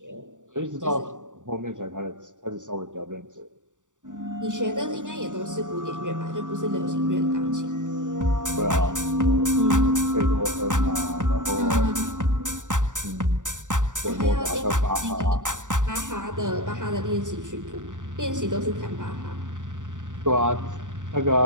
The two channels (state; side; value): late; left; 0.86 ms